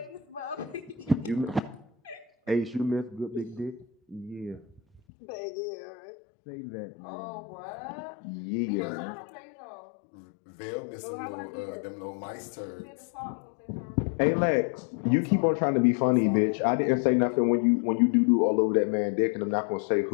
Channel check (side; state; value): right; drops out; at 5.0 s